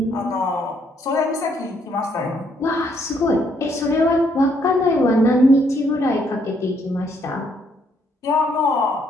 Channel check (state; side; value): normal; both; correlation 0.70